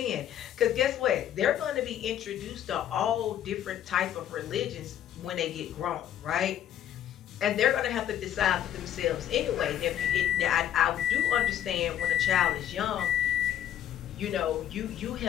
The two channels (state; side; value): quieter; right; 10.8 dB